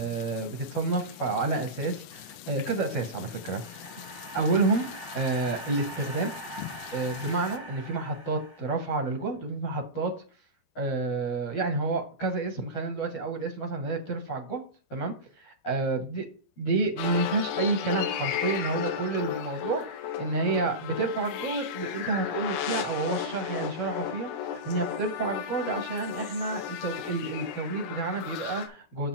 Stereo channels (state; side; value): late; right; 12 ms